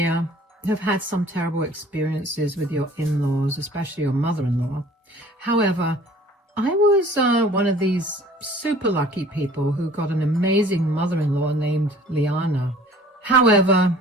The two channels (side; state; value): both; normal; correlation 0.50